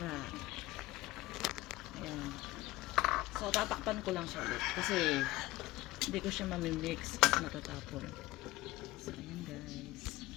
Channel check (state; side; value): quieter; right; 18.2 dB